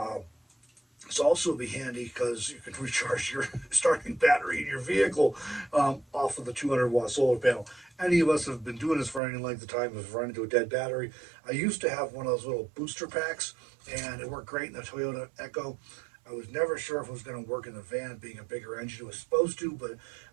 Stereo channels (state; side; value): drops out; left; at 9.2 s